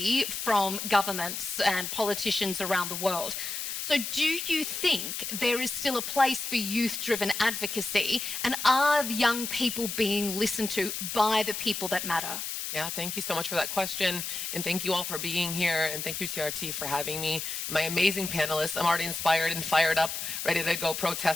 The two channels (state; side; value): noise; left; hiss, 4 dB below the sound